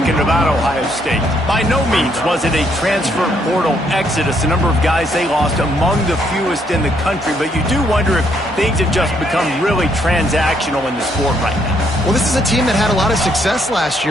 about Ohio State. By no means was it a transfer portal exodus. The number of guys they lost among the fewest in the country. But you do wonder if things have just become really transactional in the sport right now. Well, this is a team that had a lot of success last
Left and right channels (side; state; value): both; normal; correlation 0.71